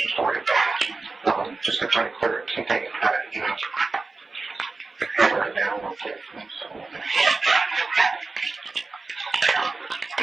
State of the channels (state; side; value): quieter; left; 3.8 dB